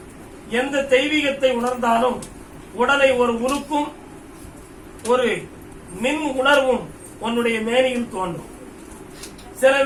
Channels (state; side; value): identical; both; correlation 1.00